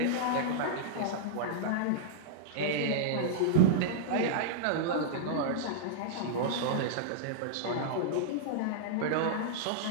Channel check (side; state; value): both; different; correlation -0.02